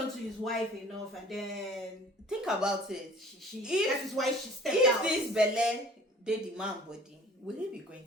to his wife enough, and then Think about it. that is why she stepped If out. this belle they the man body, will he be going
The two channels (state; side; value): normal; both; correlation 0.49